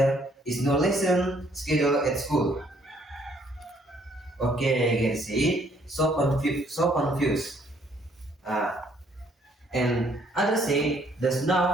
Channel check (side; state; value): both; normal; correlation 0.65